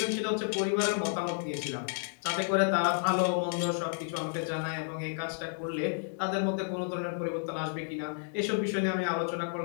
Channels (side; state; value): right; silent; digital silence